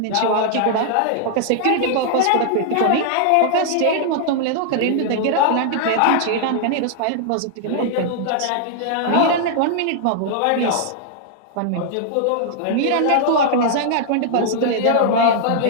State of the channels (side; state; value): both; different; correlation -0.01